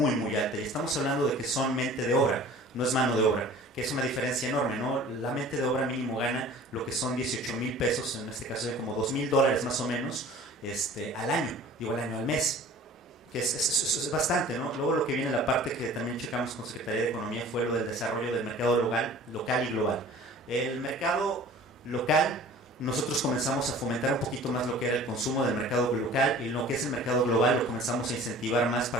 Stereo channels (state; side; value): normal; both; correlation 0.45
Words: muy alta. Y estamos hablando de que son mente de obra, no es mano de obra, que es una diferencia enorme, ¿no? La mente de obra mínimo gana lo que son 18,000 pesos, en este caso como $2,000 más o menos, al año, al mes. Que es bastante, ¿no? Luego lo que viene la parte que también checamos con Secretaría de Economía fue lo del desarrollo del mercado local y global. El mercado local, nosotros comenzamos a fomentar un poquito más lo que era el consumo del mercado local, y lo que es el mercado global lo comenzamos a incentivar más